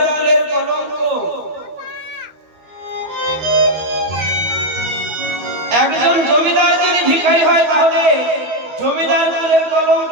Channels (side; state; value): left; late; 13 ms